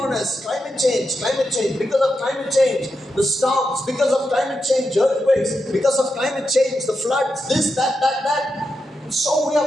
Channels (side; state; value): both; normal; correlation 0.87